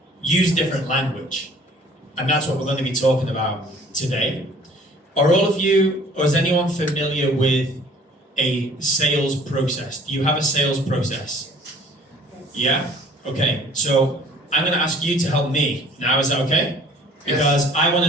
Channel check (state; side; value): normal; both; correlation 0.53